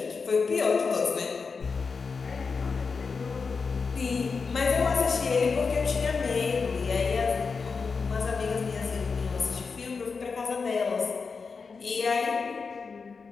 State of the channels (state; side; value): quieter; right; 5.0 dB